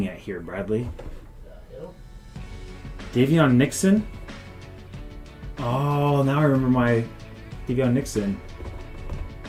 at here, Bradley? The hell? Davion Nixon? Oh, now I remember my Davion Nixon.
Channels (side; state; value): both; identical; correlation 1.00